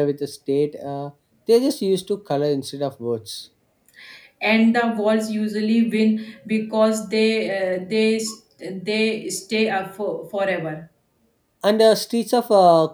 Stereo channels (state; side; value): identical; both; correlation 1.00